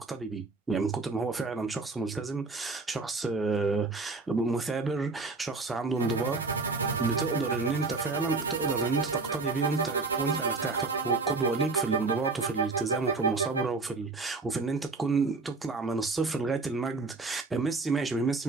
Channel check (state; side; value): quieter; left; 3.9 dB